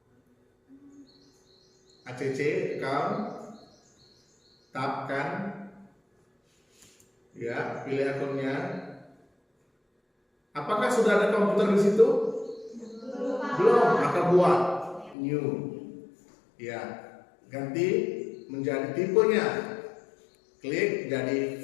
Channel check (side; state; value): right; drops out; at 15.2 s